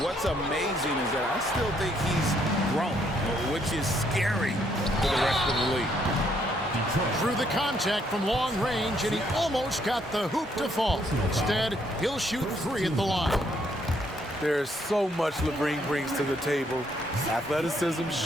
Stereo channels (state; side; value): normal; both; correlation 0.70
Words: amazing is that I still think he's grown, which is scary for the rest of the league. Through the contact from long range, and he almost got the hoop to fall. Instead, he'll shoot three at the line. There's so much Levine brings to the table. Athleticism,